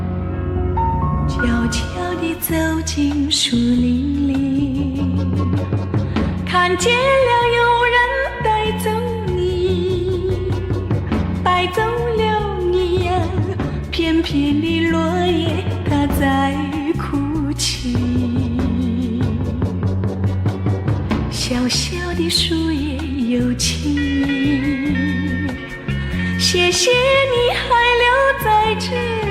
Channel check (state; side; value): identical; both; correlation 1.00